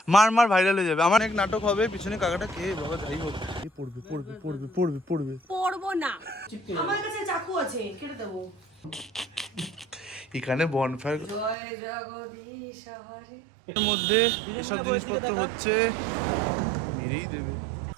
মার মার, ভাইরাল হয়ে যাবে। আমার এক নাটক হবে, পিছনে কাকাটা কে বাবা, যাই হোক এ পড়বে পড়বে পড়বে পড়বে পড়বে। পড়বো না, আমার কাছে চাকু আছে, কেটে দেবো। এখানে বনফায়ার জয় জগদীশ হরে। এর মধ্যে এসব জিনিসপত্র হচ্ছে, মেরেই দেবে।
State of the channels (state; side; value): drops out; left; at 11.6 s